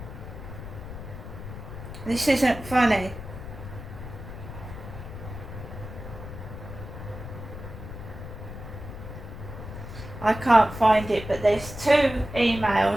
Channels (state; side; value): noise; left; rumble, 11 dB below the sound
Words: This isn't funny. I can't find it, but there's 2